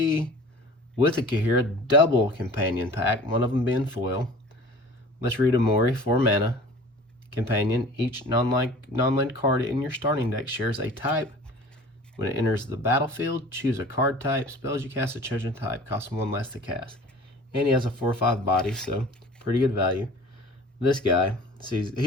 with a Ikoria double companion pack, one of them being foil. Let's read Umori, 4 mana. Companion, each non-land card in your starting deck shares a type. When it enters the battlefield, choose a card type. Spells you cast a chosen type cost 1 less to cast. And he has a 4/5 body, so pretty good value. This guy, he's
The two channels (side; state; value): both; normal; correlation 0.44